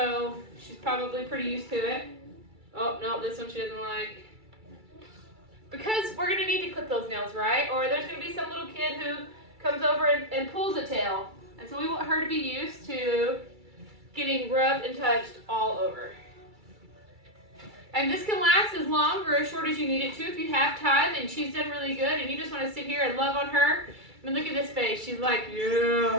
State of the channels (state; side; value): late; left; 2.3 ms